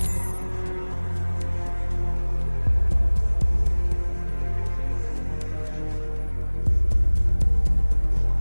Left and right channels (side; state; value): both; inverted; correlation -1.00